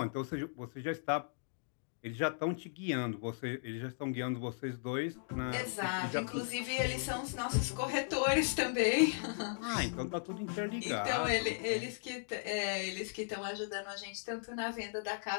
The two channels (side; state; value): right; silent; digital silence